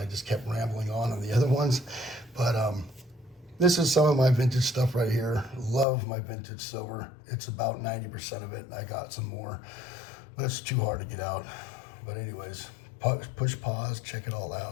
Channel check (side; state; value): right; drops out; at 5.9 s